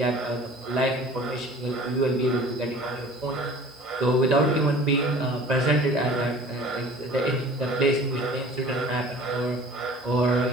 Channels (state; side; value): normal; both; correlation 0.46